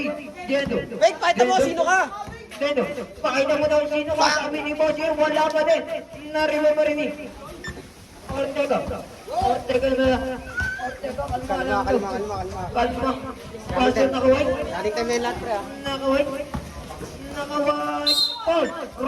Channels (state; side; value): identical; both; correlation 1.00